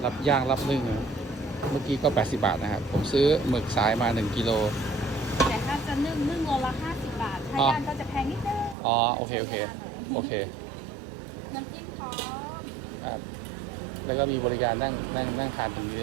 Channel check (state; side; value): drops out; left; at 8.8 s